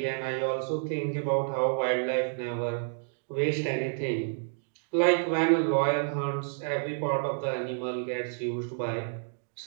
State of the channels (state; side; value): silent; left; digital silence